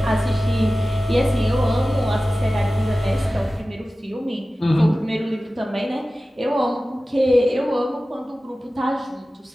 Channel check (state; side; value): normal; both; correlation 0.96